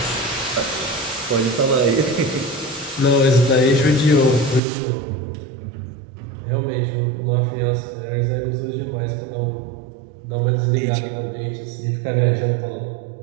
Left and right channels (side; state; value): left; drops out; at 4.6 s